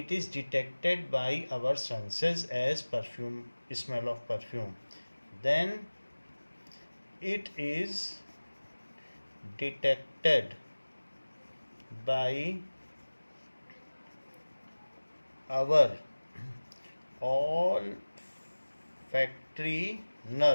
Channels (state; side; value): inverted; both; correlation -1.00